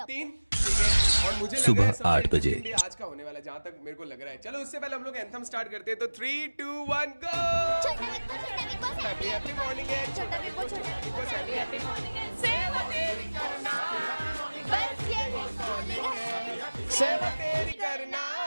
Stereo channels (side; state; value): both; inverted; correlation -1.00